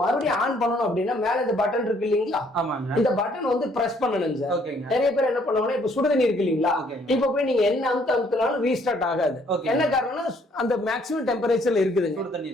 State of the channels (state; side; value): normal; both; correlation 0.65